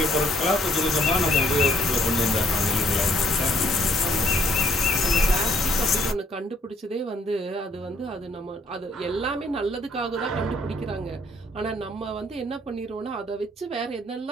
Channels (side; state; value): both; normal; correlation 0.66